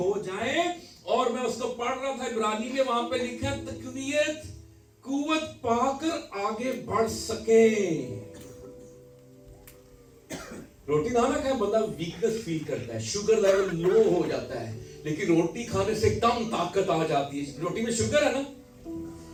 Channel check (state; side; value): identical; both; correlation 1.00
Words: जाए। और मैं उसको पढ़ रहा था इब्रानी में, वहां पे लिखा है तकवीयत, कुव्वत पाकर आगे बढ़ सके। रोटी ना खाए बंदा वीकनेस फील करता है, शुगर लेवल लो हो जाता है। लेकिन रोटी खाने से एकदम ताकत आ जाती है। रोटी में शुगर है ना,